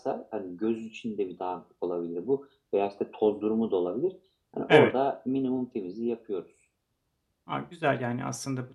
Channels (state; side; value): identical; both; correlation 1.00